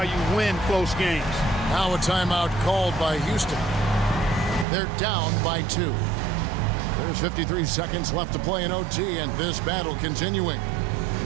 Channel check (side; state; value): left; drops out; at 4.7 s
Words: you win close games. Now a timeout called by Houston. They're down by 2. There's 53 seconds left to play in OT, and this battle continuing.